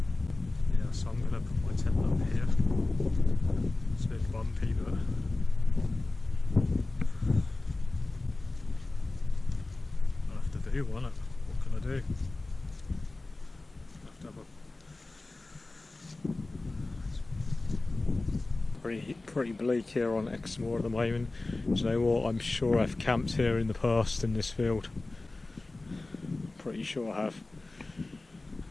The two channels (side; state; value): right; quieter; 3.1 dB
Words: Yeah, so I'm going to put my tent up here. It's a bit bumpy, but do want it. What can I do? Have to have a pretty bleak here on Exmoor at the moment. Do you know what? I'm sure I've camped here in the past in this field. Pretty sure I